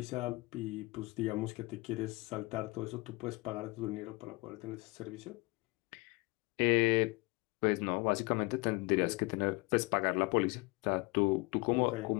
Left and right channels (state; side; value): quieter; right; 25.4 dB